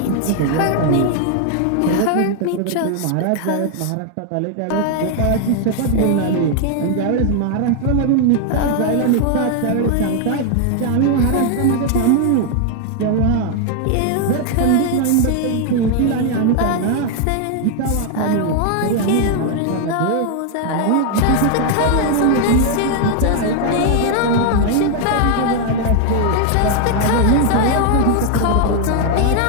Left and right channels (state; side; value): different; both; correlation 0.00